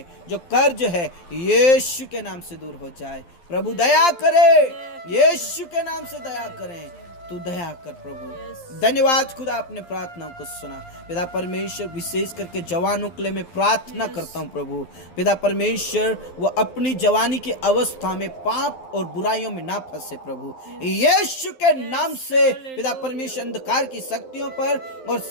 जो कर्ज है, यीशु के नाम से दूर हो जाए। प्रभु दया करे, यीशु के नाम से दया करें, तू दया कर प्रभु। धन्यवाद खुदा, आपने प्रार्थनाओं को सुना। पिता परमेश्वर विशेष करके जवानों के लिए मैं प्रार्थना करता हूँ प्रभु। पिता परमेश्वर वो अपनी जवानी की अवस्था में पाप और बुराइयों में ना फंसे प्रभु, यीशु के नाम से। पिता परमेश्वर अंधकार की शक्तियों पर और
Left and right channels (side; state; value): right; late; 11 ms